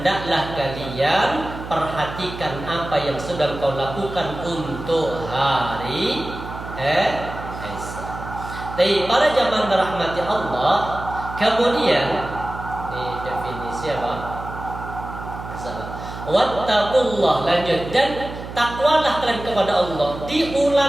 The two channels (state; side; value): noise; right; hum, 10 dB below the sound